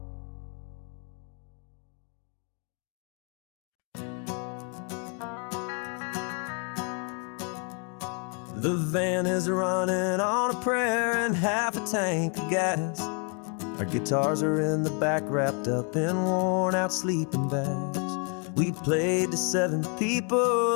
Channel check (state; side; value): quieter; right; 39.2 dB